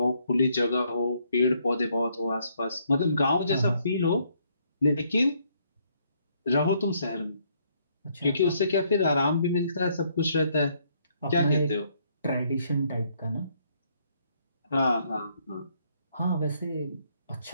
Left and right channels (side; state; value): both; inverted; correlation -0.70